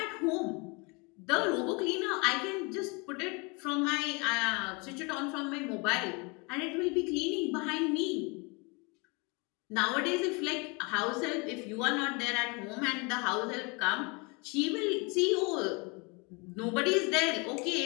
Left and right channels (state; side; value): quieter; right; 29.8 dB